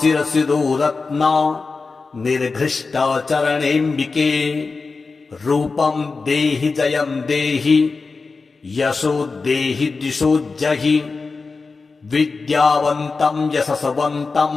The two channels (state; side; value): quieter; right; 4.2 dB